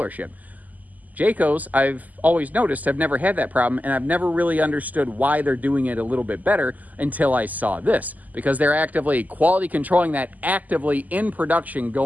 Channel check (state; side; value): late; left; 0.080 ms